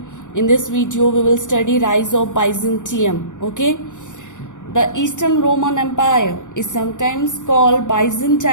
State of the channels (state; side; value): late; right; 0.86 ms